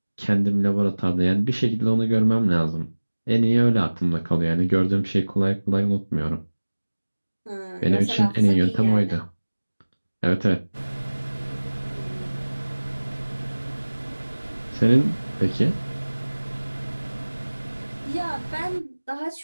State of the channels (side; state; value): both; inverted; correlation -1.00